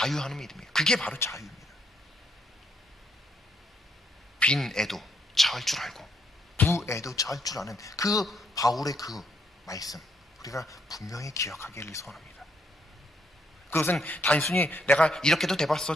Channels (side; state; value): both; normal; correlation 0.74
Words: 믿음이에요. 그게 바로 자유입니다. 빈 애도 처할 줄 알고 부애도 처할 줄 아는 그 바울의 그 말씀, 우리가 분명히 기억하기를 소원합니다. 그것은 단순히 내가 이렇게도